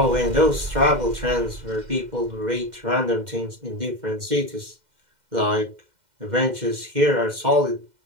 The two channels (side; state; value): left; late; 2.1 ms